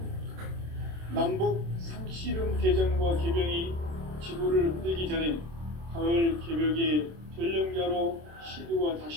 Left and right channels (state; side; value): late; left; 27 ms